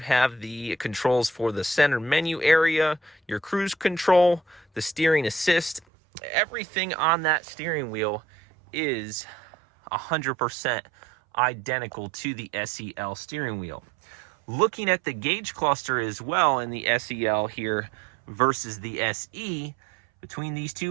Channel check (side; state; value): left; drops out; at 5.8 s